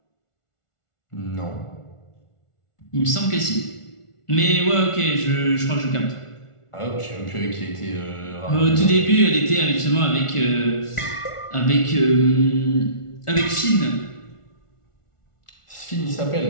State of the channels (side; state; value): right; late; 1.4 ms